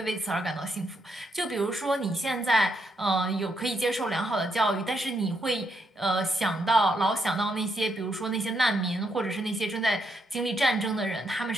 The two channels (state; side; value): normal; both; correlation 0.78